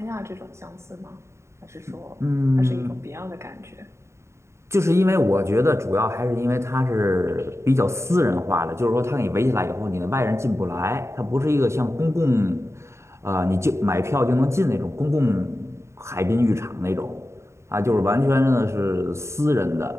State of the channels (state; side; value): late; left; 0.13 ms